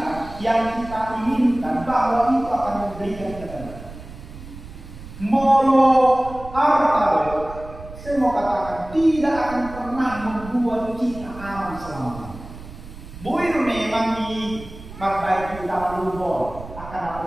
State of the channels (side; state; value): right; noise; rumble, 15 dB below the sound